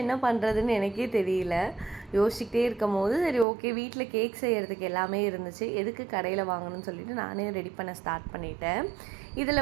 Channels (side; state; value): left; drops out; at 3.5 s